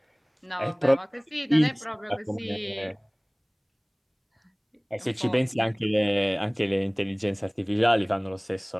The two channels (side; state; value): both; identical; correlation 1.00